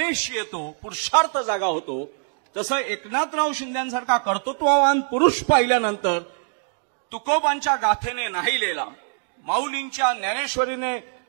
येतो, पुरुषार्थ जागा होतो, तसं एकनाथराव शिंदेसारखा कर्तृत्ववान पुरुष पाहिल्यानंतर तुकोबांच्या गाथेने नाहीलेला, माऊलींच्या ज्ञानेश्वरीने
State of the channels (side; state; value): left; silent; 63 dB below the other